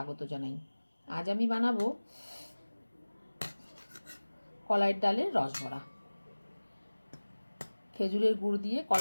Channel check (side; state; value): both; inverted; correlation -1.00